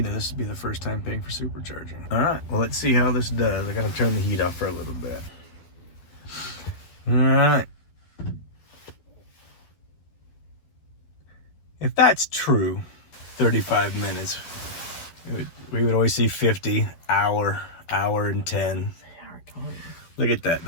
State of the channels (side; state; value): right; late; 12 ms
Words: This would be the first time paying for supercharging. All right, well, let's see how this does. I gotta turn the heat off for a little bit. All right. If that's true, 35 minutes. We would always see 50, hour and 10. Look at that.